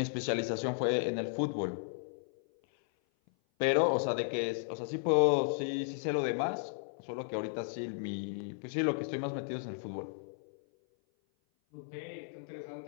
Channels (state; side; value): silent; right; 55 dB below the other